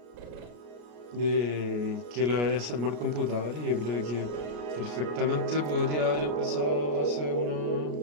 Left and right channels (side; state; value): left; late; 33 ms